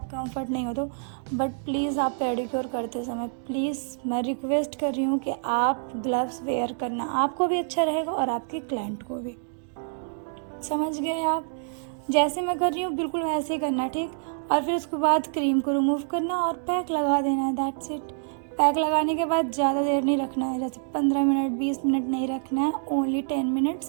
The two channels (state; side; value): silent; left; digital silence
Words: कंफर्ट नहीं हो तो, बट प्लीज़ आप पेडिक्योर करते समय प्लीज़ मैं रिक्वेस्ट कर रही हूँ कि आप ग्लव्स वेयर करना, आपको भी अच्छा रहेगा और आपके क्लाइंट को भी। समझ गए आप? जैसे मैं कर रही हूँ बिल्कुल वैसे ही करना। ठीक, और फिर उसके बाद क्रीम को रिमूव करना और पैक लगा देना है, दैट्स इट। पैक लगाने के बाद ज़्यादा देर नहीं रखना है, जैसे 15 मिनट 20 मिनट नहीं रखना है, ओनली 10